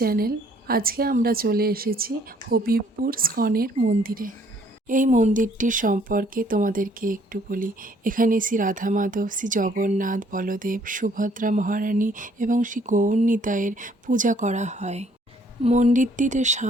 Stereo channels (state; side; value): normal; both; correlation 0.62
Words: আজকে আমরা চলে এসেছি হবিবপুর স্কনের মন্দিরে। এই মন্দিরটির সম্পর্কে তোমাদেরকে একটু বলি। এখানে শ্রী রাধা মাধব, শ্রী জগন্নাথ, বলদেব, সুভদ্রা মহারানী এবং শ্রী গৌরনিতাইয়ের পূজা করা হয়। মন্দিরটিতে